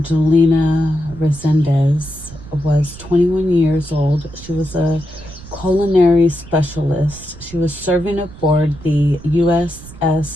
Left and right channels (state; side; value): noise; right; rumble, 17 dB below the sound